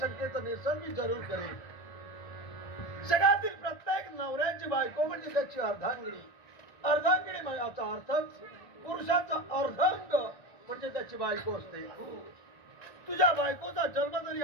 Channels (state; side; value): late; right; 1.9 ms